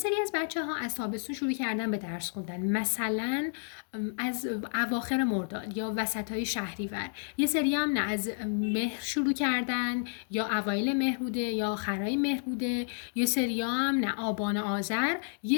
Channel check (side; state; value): right; silent; digital silence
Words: از بچه‌ها از تابستون شروع کردن به درس خوندن، مثلا از اواخر مرداد یا وسطای شهریور. یه سری هم نه از مهر شروع کردن یا اوایل مهر بوده یا آخرای مهر بوده. یه سری هم نه آبان آذر.